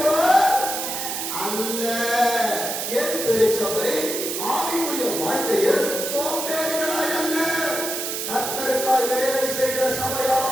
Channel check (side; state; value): right; noise; hiss, 3 dB below the sound